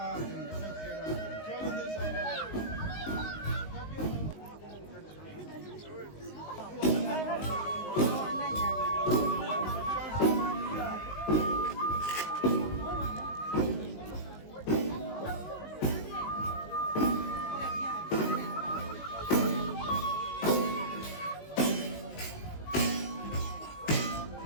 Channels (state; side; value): late; right; 19 ms